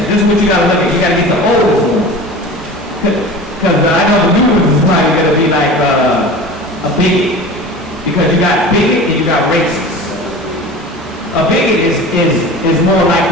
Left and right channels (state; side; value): normal; both; correlation 0.36